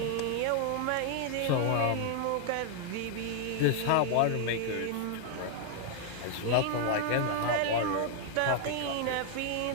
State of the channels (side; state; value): both; different; correlation 0.00